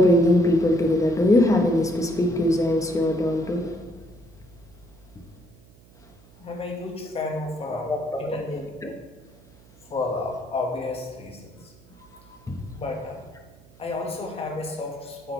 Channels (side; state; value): right; noise; hum, 26 dB below the sound